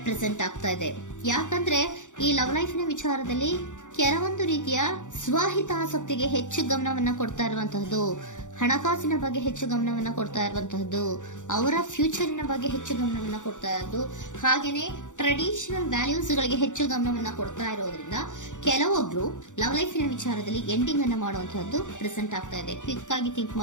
ಆಗ್ತಾ ಇದೆ. ಯಾಕಂದ್ರೆ ಈ ಲವ್ ಲೈಫಿನ ವಿಚಾರದಲ್ಲಿ ಕೆಲವೊಂದು ರೀತಿಯ ಸ್ವಹಿತಾಸಕ್ತಿಗೆ ಹೆಚ್ಚು ಗಮನವನ್ನ ಕೊಡ್ತಾ ಇರುವಂತಹದ್ದು, ಹಣಕಾಸಿನ ಬಗ್ಗೆ ಹೆಚ್ಚು ಗಮನವನ್ನ ಕೊಡ್ತಾ ಇರುವಂತಹದ್ದು, ಅವರ ಫ್ಯೂಚರಿನ ಬಗ್ಗೆ ಹೆಚ್ಚು ಗಮನವನ್ನ ಕೊಡ್ತಾ ಇರೋದು, ಹಾಗೇನೆ ಟ್ರೆಡಿಷನಲ್ ವ್ಯಾಲ್ಯೂಸ್ ಗಳಿಗೆ ಹೆಚ್ಚು ಗಮನವನ್ನ ಕೊಡ್ತಾ ಇರೋದ್ರಿಂದ ಕೆಲವೊಬ್ರು ಲವ್ ಲೈಫಿನ ವಿಚಾರದಲ್ಲಿ ಎಂಡಿಂಗ್ ಅನ್ನ ಮಾಡುವಂತಹದ್ದು ಪ್ರೆಸೆಂಟ್ ಆಗ್ತಾ ಇದೆ. ಕ್ವಿಕ್ ಆಗಿ ಥಿಂಕ್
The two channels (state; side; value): late; right; 0.86 ms